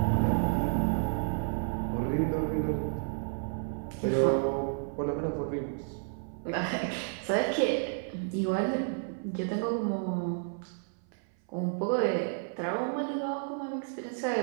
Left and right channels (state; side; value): silent; left; 56 dB below the other